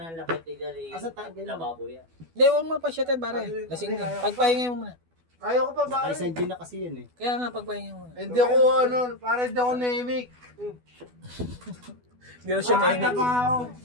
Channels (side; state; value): left; late; 12 ms